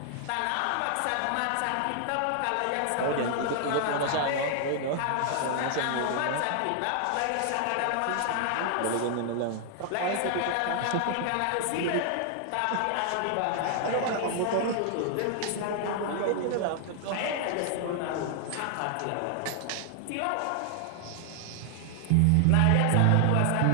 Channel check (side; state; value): both; different; correlation 0.00